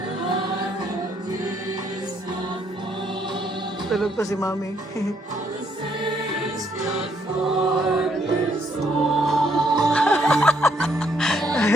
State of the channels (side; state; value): both; normal; correlation 0.71